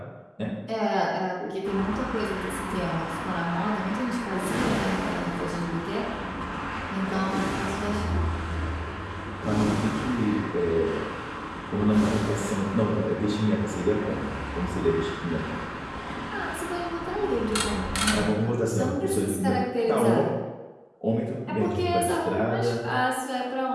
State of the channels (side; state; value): both; identical; correlation 1.00